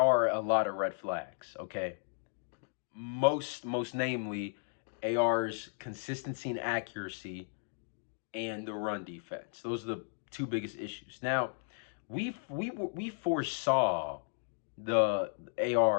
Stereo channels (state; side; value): silent; right; digital silence